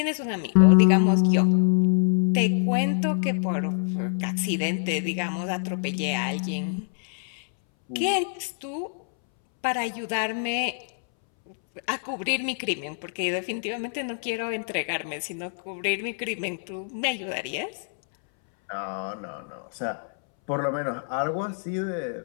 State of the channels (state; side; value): silent; right; 61 dB below the other